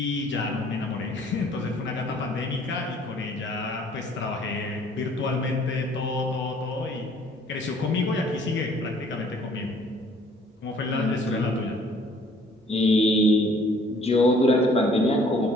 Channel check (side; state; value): both; normal; correlation 0.58